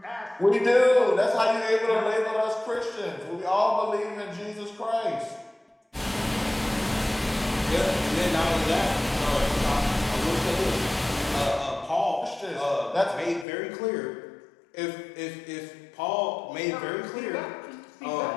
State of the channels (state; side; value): drops out; right; at 13.5 s